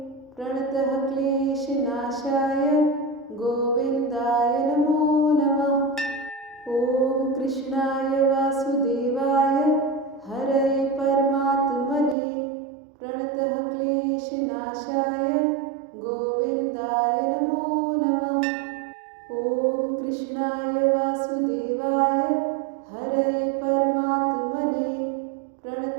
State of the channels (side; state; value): left; drops out; at 12.2 s